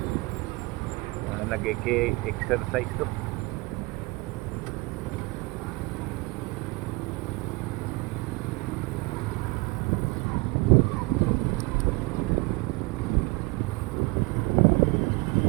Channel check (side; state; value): left; quieter; 24.7 dB